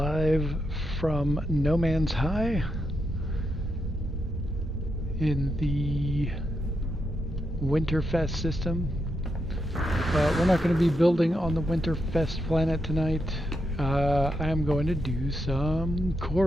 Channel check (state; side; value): normal; both; correlation 0.83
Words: from No Man's High in the Winterfest system. But we're not going to be building on the Winterfest planet tonight. I am going to do some